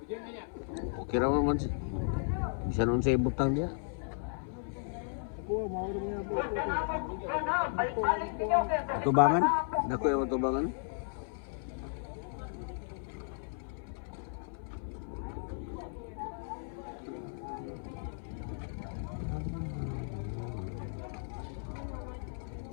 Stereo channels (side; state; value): right; silent; 55 dB below the other